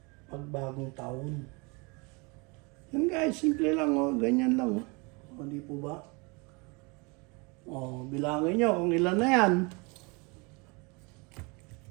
pag bagong taon. Yan guys, simple lang oh, ganyan lang oh. O di po ba? O, bilangin niyo kung ilan na yan.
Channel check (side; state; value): left; quieter; 29.3 dB